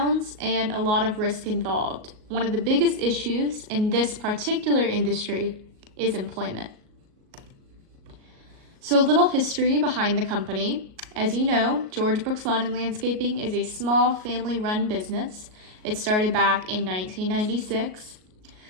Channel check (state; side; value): late; left; 38 ms